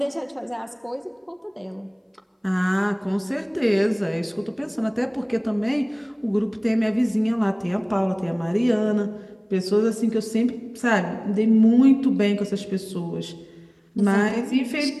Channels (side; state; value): both; identical; correlation 1.00